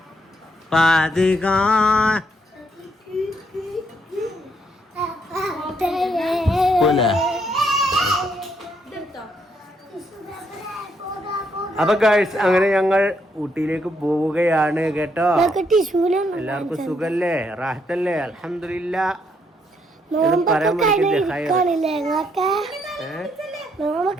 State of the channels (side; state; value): both; normal; correlation 0.74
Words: അപ്പൊ ഗൈസ് അങ്ങനെ ഞങ്ങൾ ഊട്ടിയിലേക്ക് പോവുകയാണ് കേട്ടോ. എല്ലാവർക്കും സുഖല്ലേ, റാഹത്തല്ലേ? അൽഹംദുലില്ലാ. പറയാൻ